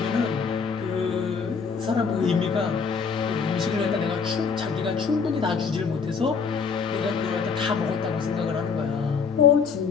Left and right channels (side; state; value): right; quieter; 5.6 dB